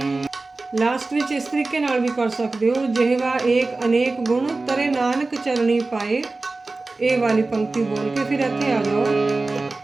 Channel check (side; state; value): left; quieter; 3.4 dB